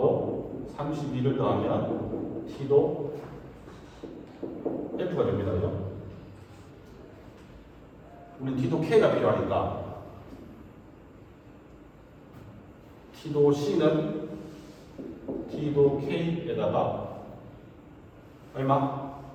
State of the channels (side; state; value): both; identical; correlation 1.00